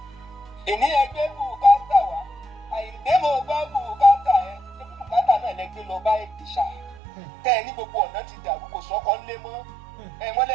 èní ẹgbẹ́ bùkátà wá Àyìndé mo gbọ́ bùkátà ẹ ṣé bùkátà náà lẹgbẹ́ lọ bá èdè ṣá tẹ́ ẹ ní gbogbo ọ̀nà ti dàrú kò sọ́kọ́ ńlé mọ́ ẹ wọ́n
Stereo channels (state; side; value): drops out; left; at 7.0 s